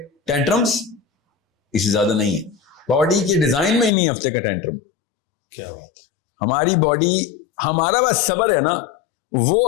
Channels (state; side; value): drops out; right; at 3.9 s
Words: ٹینٹرمز, اس سے زیادہ نہیں ہے. باڈی کے ڈیزائن میں ہی نہیں ہفتے کا ٹینٹرم. کیا بات, ہماری باڈی, ہمارا بس صبر ہے نا, وہ